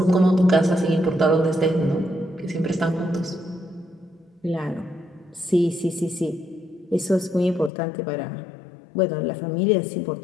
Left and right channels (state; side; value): drops out; right; at 7.7 s